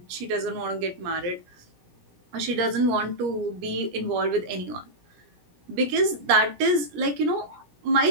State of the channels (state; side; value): late; left; 17 ms